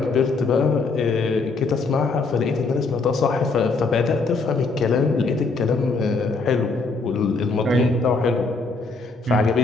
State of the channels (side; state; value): right; quieter; 3.9 dB